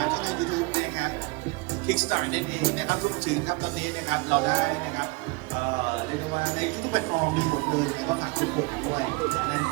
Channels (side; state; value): left; quieter; 26.1 dB